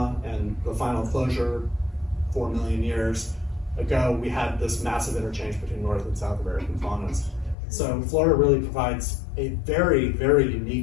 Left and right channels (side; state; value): right; drops out; at 7.6 s